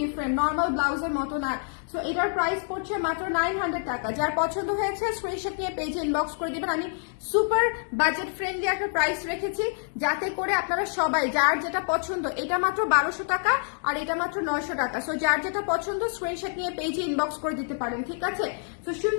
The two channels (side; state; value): right; silent; 58 dB below the other